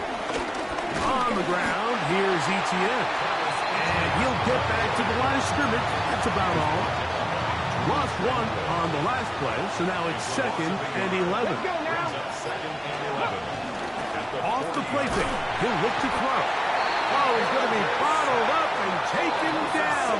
On the ground, here's Etienne. And he'll get back to the line of scrimmage. That's about all. Lost one on the last play, so now it's second and 11. Off the play fake, he'll look to throw. Oh, he's going to be bottled up and taken down.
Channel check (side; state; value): both; identical; correlation 1.00